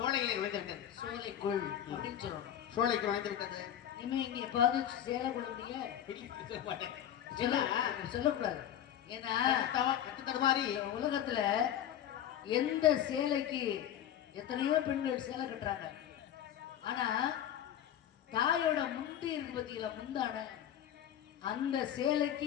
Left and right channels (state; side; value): quieter; right; 10.6 dB